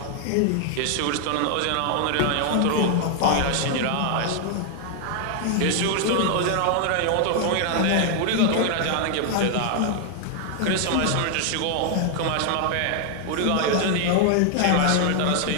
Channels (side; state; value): both; different; correlation 0.00